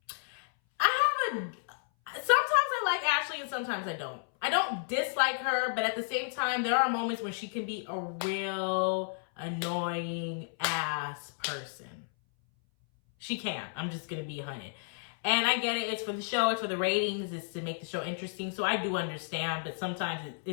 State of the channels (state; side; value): silent; right; 56 dB below the other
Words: sometimes I like Ashley and sometimes I don't. I don't dislike her, but at the same time, there are moments when she can be a real annoying ass person. She can. I'm just going to be 100. And I get it. It's for the show. It's for the ratings. It's to make the show interesting. So I do understand. But sometimes